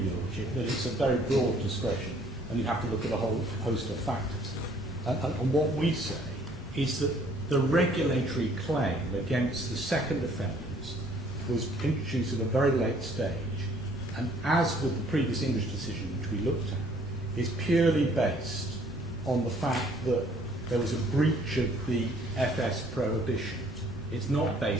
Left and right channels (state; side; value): normal; both; correlation 0.60